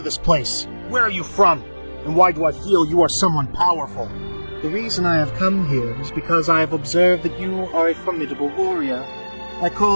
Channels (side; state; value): both; inverted; correlation -1.00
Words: this place? Where are you from? And why do I feel you are someone powerful?" "The reason I have come here is because I have observed that you are a formidable warrior. I